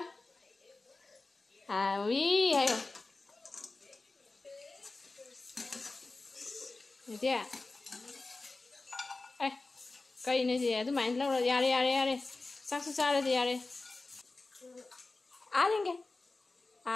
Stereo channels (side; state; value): right; quieter; 3.4 dB